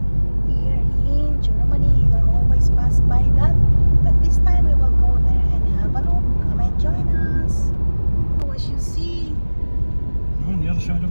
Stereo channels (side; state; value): both; inverted; correlation -1.00